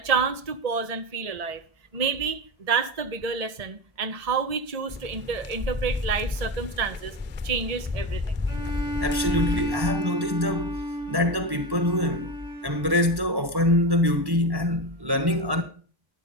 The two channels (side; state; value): left; late; 1.1 ms